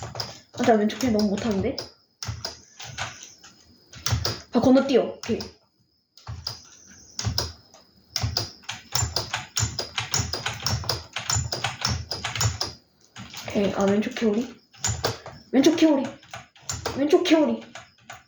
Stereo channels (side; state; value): both; identical; correlation 1.00